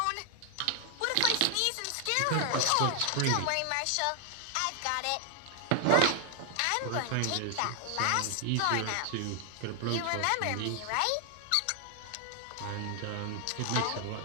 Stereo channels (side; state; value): both; different; correlation 0.00